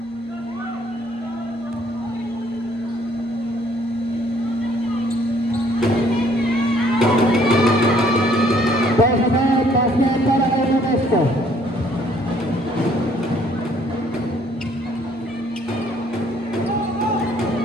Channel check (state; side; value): normal; both; correlation 0.62